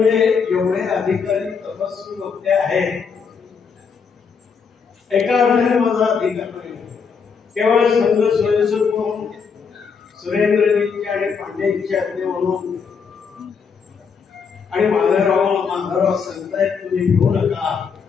एवढे अधिकारी तपस्वी भक्ते आहेत. एका अर्थाने माझा अधिकार नाही, केवळ संघ स्वयंसेवक म्हणून सुरेंद्रजींची आणि पांडेंची आज्ञा म्हणून आणि माधवराव सांगतायत तुम्ही घेऊ नका,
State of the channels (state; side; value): quieter; right; 5.9 dB